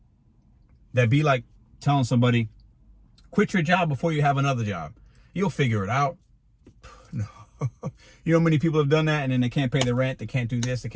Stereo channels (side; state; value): both; identical; correlation 1.00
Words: That'd be like telling somebody, quit your job before you have another job. You'll figure it out. No. You know how many people have done that and then they can't pay the rent, they can't do this, they